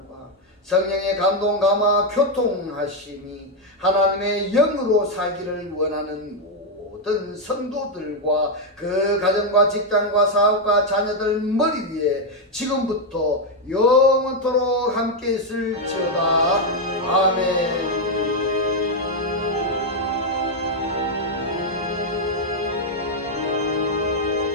성령의 감동 감화 교통하심이 하나님의 영으로 살기를 원하는 모든 성도들과 그 가정과 직장과 사업과 자녀들 머리 위에 지금부터 영원토록 함께 있을지어다. 아멘.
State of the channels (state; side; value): normal; both; correlation 0.02